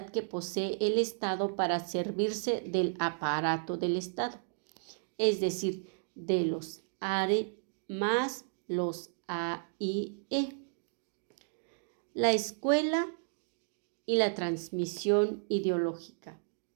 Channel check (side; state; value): left; silent; digital silence